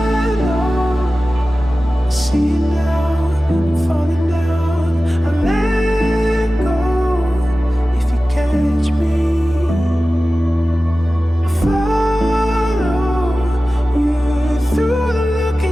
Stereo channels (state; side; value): normal; both; correlation 0.95